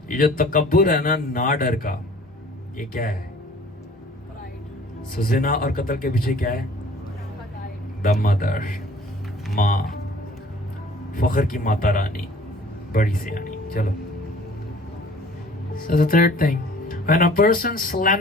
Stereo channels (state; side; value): normal; both; correlation 0.51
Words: ये जो तकब्बुर है ना डर का, ये क्या है? सो जिना और कत्ल के पीछे क्या है? द मदर, माँ, फख्र की माता रानी, बड़ी सियानी. चलो. So the third thing, when a person